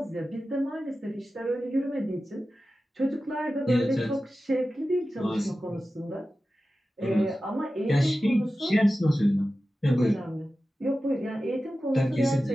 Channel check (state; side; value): normal; both; correlation 0.94